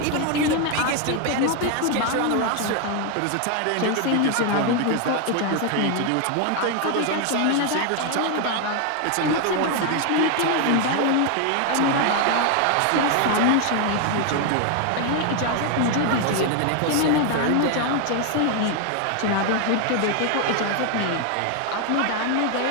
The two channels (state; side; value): different; both; correlation 0.01